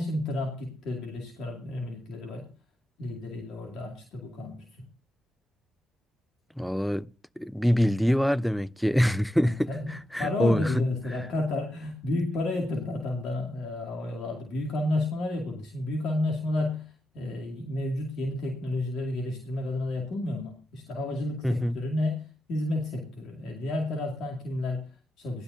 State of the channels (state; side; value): normal; both; correlation 0.87